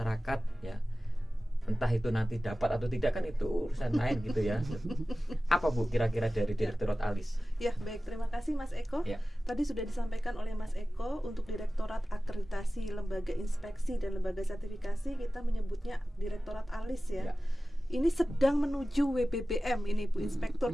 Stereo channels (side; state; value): both; normal; correlation 0.96